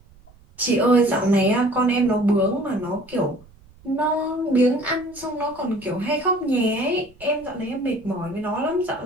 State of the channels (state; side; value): noise; right; rumble, 26 dB below the sound